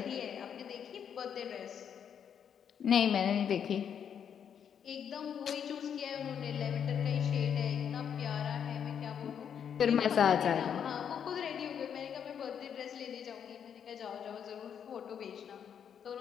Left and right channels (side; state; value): right; quieter; 8.1 dB